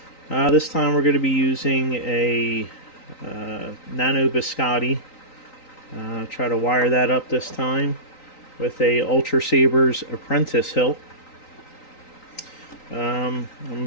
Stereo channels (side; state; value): right; late; 3.9 ms